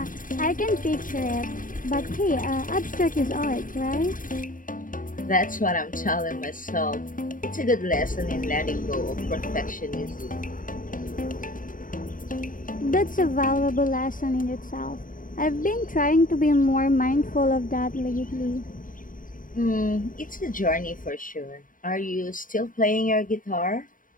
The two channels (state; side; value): late; right; 0.39 ms